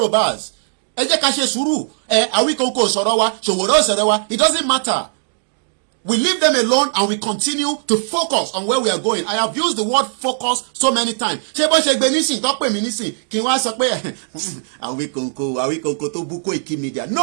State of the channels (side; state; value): left; silent; digital silence